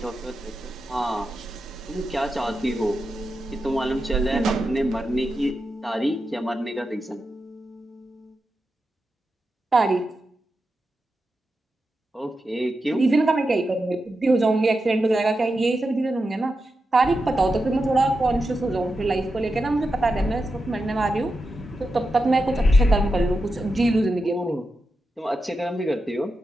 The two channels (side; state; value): both; normal; correlation 0.89